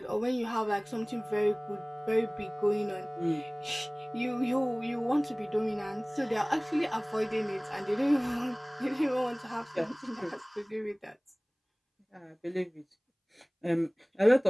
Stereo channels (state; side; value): identical; both; correlation 1.00